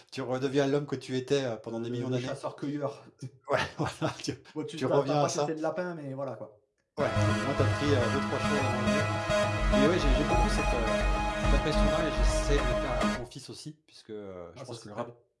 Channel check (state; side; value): identical; both; correlation 1.00